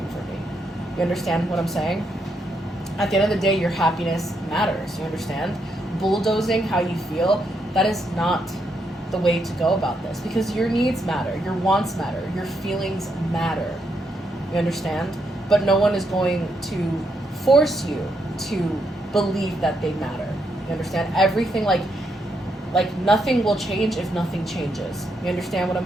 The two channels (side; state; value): both; normal; correlation 0.78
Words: for me. You understand what I'm saying? At the end of the day, your happiness matters. You understand? Bulldozing how you feel, that is not the way to go about this, because your needs matter, your wants matter, your feelings matter. You understand? But no one is going to force you to believe that they matter. You understand? Everything, like nothing will change if nothing changes. You understand what I'm